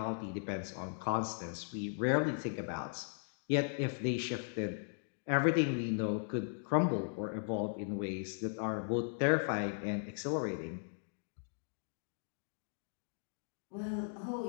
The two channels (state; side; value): silent; right; digital silence